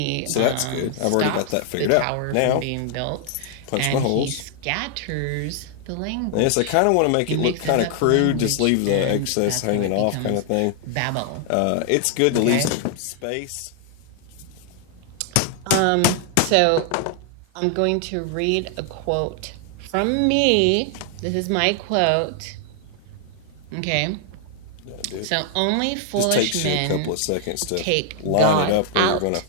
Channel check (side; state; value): both; different; correlation 0.00